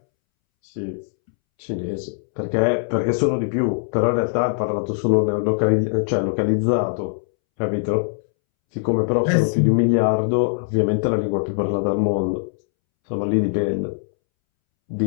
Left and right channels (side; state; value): right; silent; 65 dB below the other